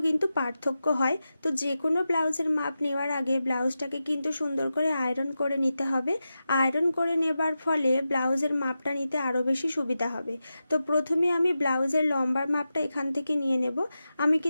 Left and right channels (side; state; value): both; inverted; correlation -0.91